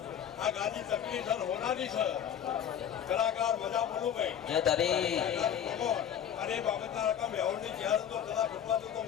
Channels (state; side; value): quieter; right; 9.2 dB